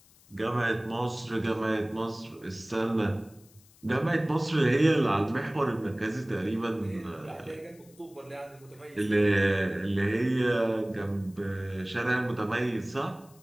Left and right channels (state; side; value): noise; left; hiss, 27 dB below the sound